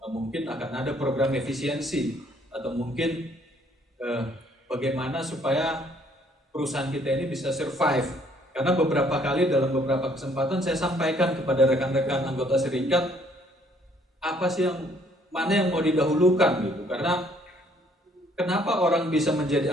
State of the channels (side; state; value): both; normal; correlation 0.64